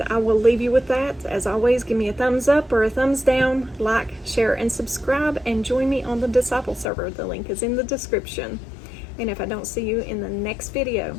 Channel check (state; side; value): drops out; right; at 6.9 s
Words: I will leave you with that. As always, give me a thumbs up or a thumbs down, like, share, and subscribe, and join me on the Disciple server. The link is in the description. And if I don't see you in the next